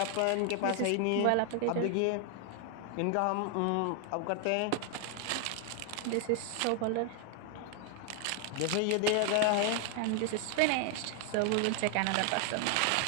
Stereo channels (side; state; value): both; different; correlation 0.00